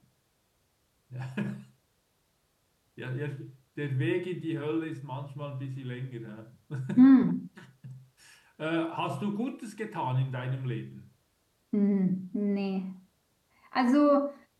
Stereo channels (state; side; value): identical; both; correlation 1.00